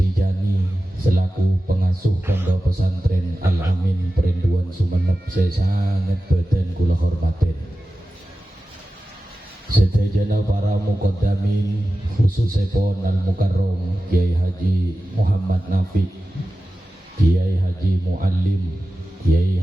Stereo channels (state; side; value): normal; both; correlation 0.94